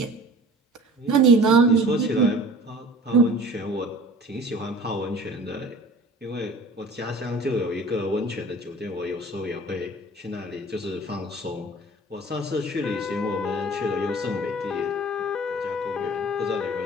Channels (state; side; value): normal; both; correlation 0.45